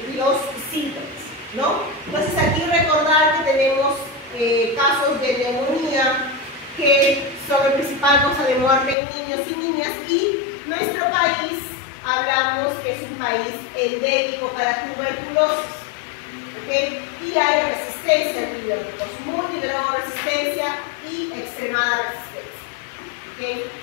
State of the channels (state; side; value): drops out; right; at 9.0 s